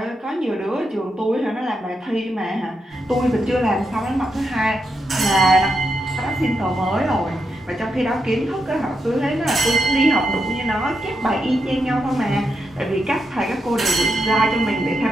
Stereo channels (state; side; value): normal; both; correlation 0.83